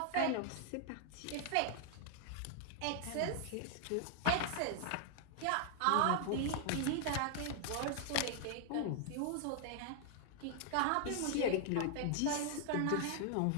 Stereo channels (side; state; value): both; different; correlation 0.00